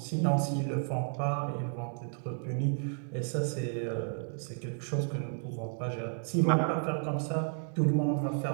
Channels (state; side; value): silent; left; 56 dB below the other